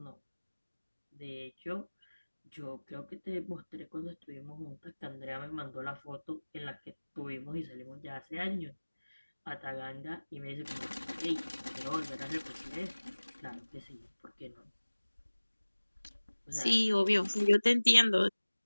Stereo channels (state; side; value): inverted; both; correlation -1.00